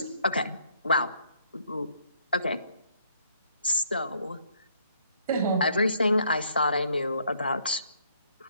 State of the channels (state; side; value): inverted; both; correlation -0.67